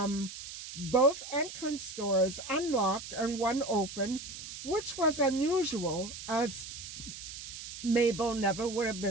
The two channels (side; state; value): right; noise; hiss, 10 dB below the sound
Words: both entrance doors unlocked and one open, which was unusual, as Mabel never would have